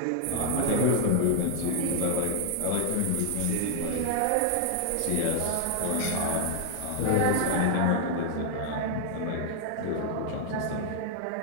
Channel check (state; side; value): different; both; correlation 0.00